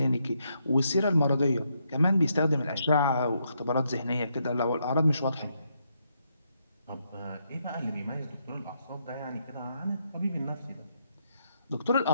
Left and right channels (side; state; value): both; inverted; correlation -0.78